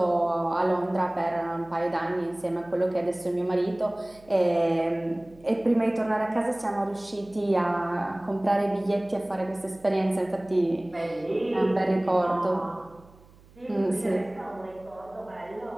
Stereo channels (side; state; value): right; noise; hum, 26 dB below the sound